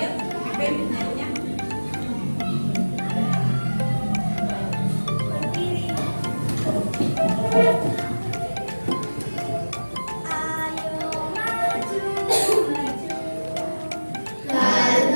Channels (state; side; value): inverted; both; correlation -1.00